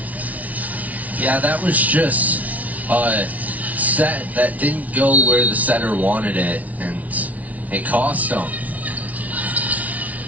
Yeah, that was just a set that didn't go where the setter wanted it, and it cost them.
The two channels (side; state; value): left; late; 0.071 ms